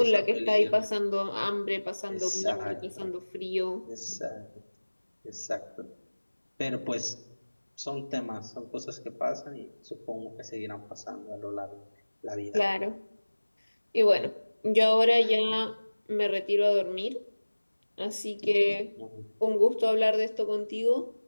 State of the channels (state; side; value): inverted; both; correlation -1.00